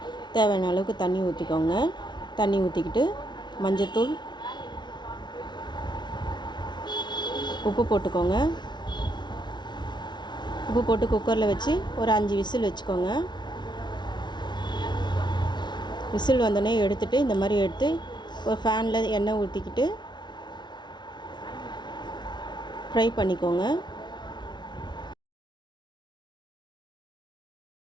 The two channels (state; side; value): late; right; 0.21 ms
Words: தேவையான அளவுக்கு தண்ணி ஊற்றிக்கோங்க. தண்ணி ஊற்றிக்கிட்டு மஞ்சத்தூள், உப்பு போட்டுக்கோங்க. உப்பு போட்டு குக்கரில் வச்சு ஒரு 5 விசில் வச்சுக்கோங்க. விசில் வந்தோடனே எடுத்துகிட்டு இந்த மாதிரி எடுத்து ஒரு ஃபேனில் எண்ணெய் ஊற்றிக்கிட்டு ஃப்ரை பண்ணிக்கோங்க.